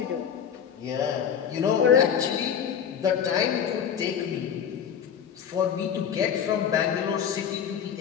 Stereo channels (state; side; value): quieter; right; 8.2 dB